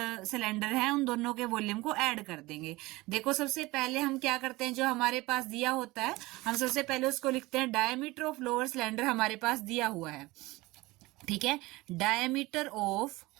सिलेंडर है उन दोनों के वॉल्यूम को ऐड कर देंगे। देखो सबसे पहले हम क्या करते हैं, जो हमारे पास दिया होता है हम सबसे पहले उसको लिखते हैं डायमीटर ऑफ लोअर सिलेंडर हमारे पास दिया हुआ है। ठीक है, डायमीटर ऑफ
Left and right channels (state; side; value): quieter; left; 20.7 dB